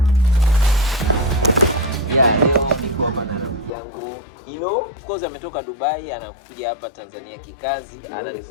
Of course ametoka Dubai, anakuja hapa Tanzania kikazi,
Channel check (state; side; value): drops out; right; at 3.7 s